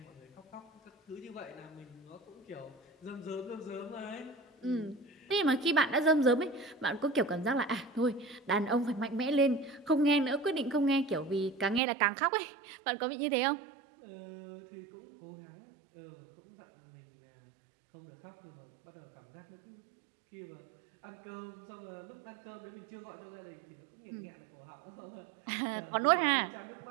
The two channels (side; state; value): left; drops out; at 11.8 s